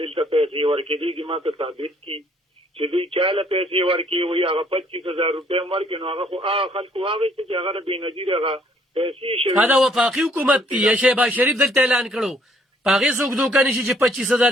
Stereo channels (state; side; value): normal; both; correlation 0.65